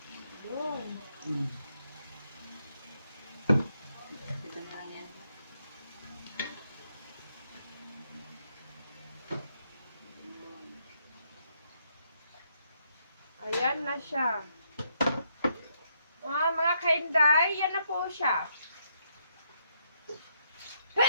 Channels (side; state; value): both; inverted; correlation -0.76